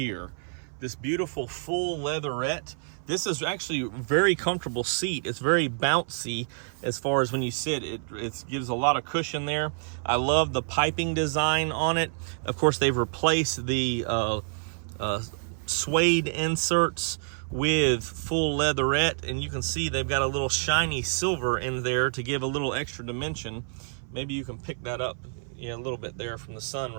This beautiful full leatherette. This is actually a very comfortable seat. It's very bouncy as far as when you sit. It gives a lot of cushion there. I love the piping design on it. Of course, they've replaced the suede inserts with full leatherette, and you can see they've got a little shiny silver in there to give a little extra dimension. Maybe you can pick that up, a little bit there from the sun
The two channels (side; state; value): left; silent; 57 dB below the other